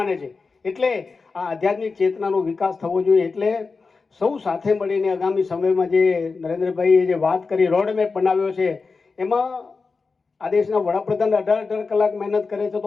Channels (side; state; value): right; quieter; 4.4 dB